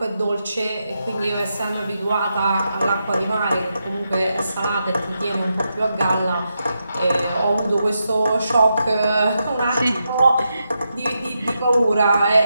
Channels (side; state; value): both; inverted; correlation -0.85